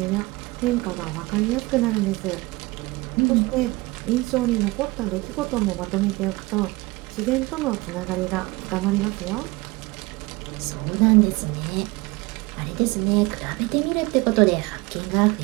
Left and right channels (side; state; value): left; quieter; 22.7 dB